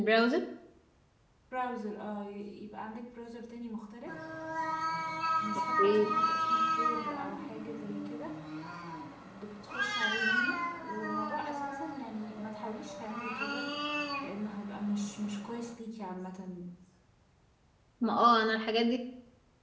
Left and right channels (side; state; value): both; identical; correlation 1.00